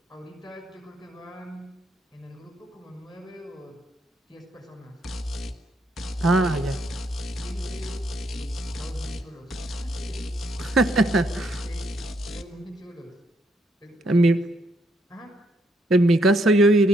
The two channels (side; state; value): both; normal; correlation 0.74